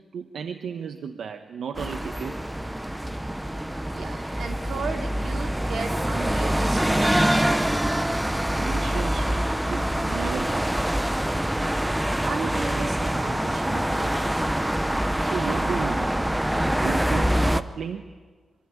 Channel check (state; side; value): normal; both; correlation 0.97